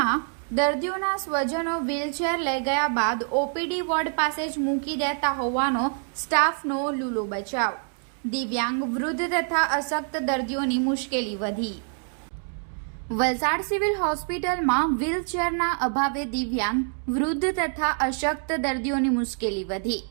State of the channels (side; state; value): left; silent; 56 dB below the other